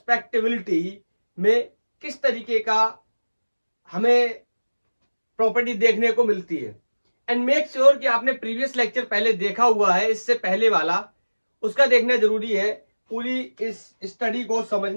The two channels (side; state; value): both; inverted; correlation -1.00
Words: में किस तरीके का हमें प्रॉपर्टी देखने को मिलती है। एंड मेक श्योर कि आपने प्रीवियस लेक्चर पहले देखा हुआ है, इससे पहले वाला उसका देखना जरूरी है पूरी इस स्टडी को